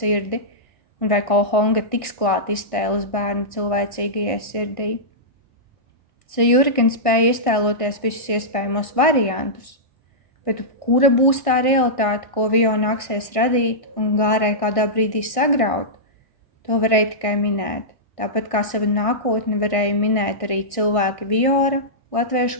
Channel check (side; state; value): right; late; 1.6 ms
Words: un vai Kohonga tiks klāt iztēles bērnu cilvēcīgajai sirdī. Zajūri gan spēja iztēloties visus iespējamos variantus, bet kura būs tā realitāte, ko Vio nāksies radīt un Gārai kādā brīdī sagraut, to varēja tikai minēt. Tāpat kā savu nākotni varēja minēt arī cilvēki Viora,